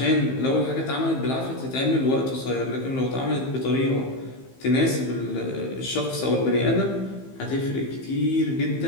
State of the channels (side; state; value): right; late; 15 ms